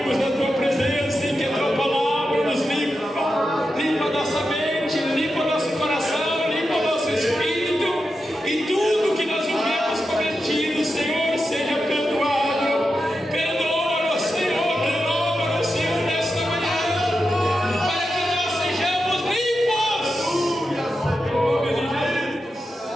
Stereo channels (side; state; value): both; normal; correlation 0.89